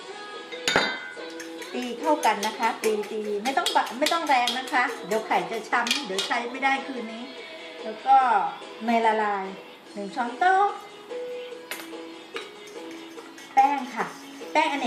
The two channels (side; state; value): both; identical; correlation 1.00